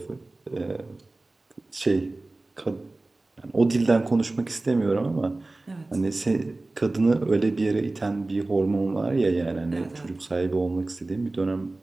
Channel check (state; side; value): quieter; left; 3.0 dB